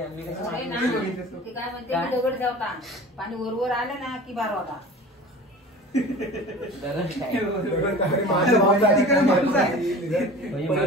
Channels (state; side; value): normal; both; correlation 0.39